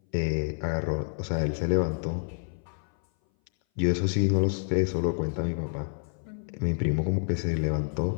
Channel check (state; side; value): silent; right; 58 dB below the other